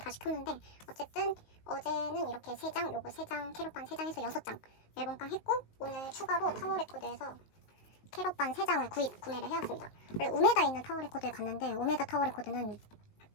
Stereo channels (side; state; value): right; late; 19 ms